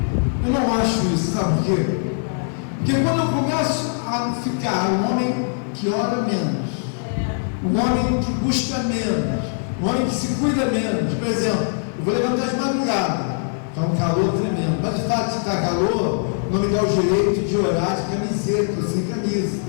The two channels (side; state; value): right; silent; 55 dB below the other